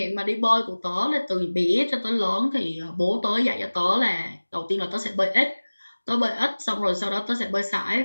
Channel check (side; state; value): both; inverted; correlation -1.00